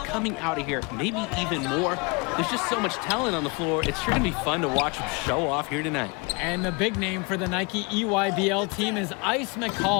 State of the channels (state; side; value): quieter; right; 29.9 dB